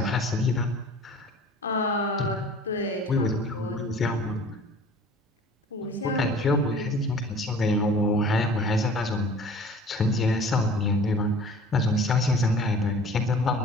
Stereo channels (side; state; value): both; normal; correlation 0.46